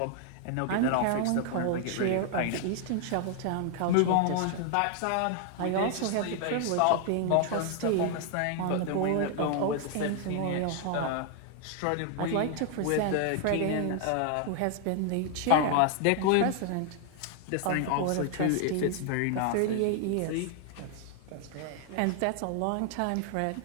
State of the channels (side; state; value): both; different; correlation 0.00